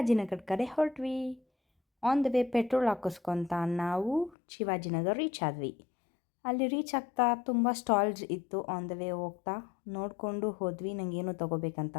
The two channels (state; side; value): drops out; right; at 4.4 s